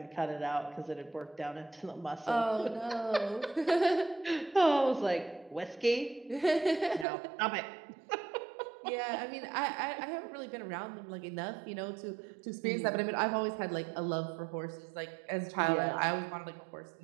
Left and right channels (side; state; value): left; drops out; at 7.1 s